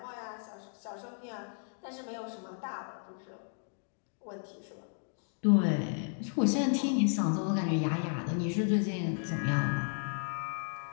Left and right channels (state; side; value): silent; right; 55 dB below the other